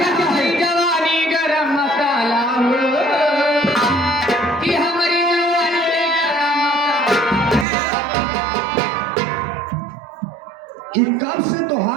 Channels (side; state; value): left; drops out; at 7.7 s